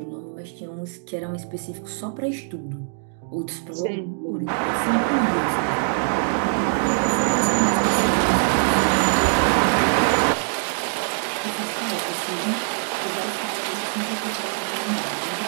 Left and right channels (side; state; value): left; silent; 63 dB below the other